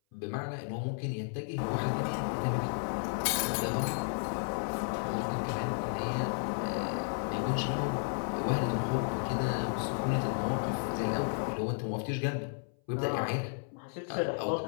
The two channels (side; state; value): right; silent; 56 dB below the other